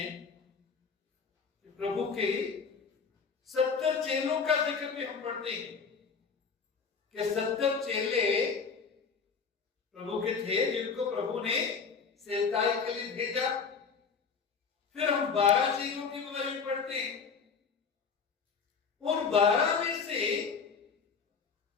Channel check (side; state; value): right; quieter; 5.6 dB